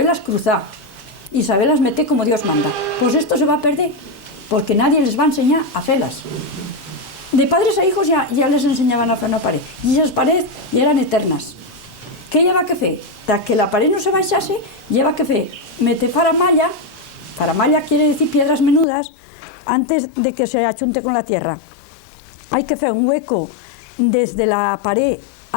cruzar y saberlas meter como Dios manda. Pues esto se va a perder, porque nadie les va a enseñar a hacerlas. De padres a hijos ya les enseñaban a hacer una pared, y esas paredes ya eran eternas. ¿Qué lleva que fer? Para que la pared no se baixase, lleva que fer meter faramalla. Faramalla quiere decir piedras menudas antes de que se achunte con la tierra. Hay que hacer un hueco desde la pared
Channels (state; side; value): drops out; right; at 18.9 s